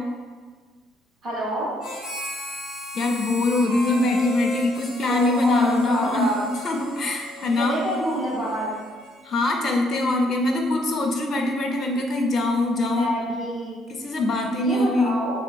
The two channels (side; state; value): both; normal; correlation 0.70